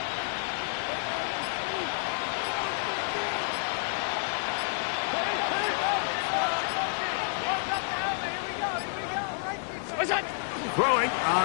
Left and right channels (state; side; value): silent; right; digital silence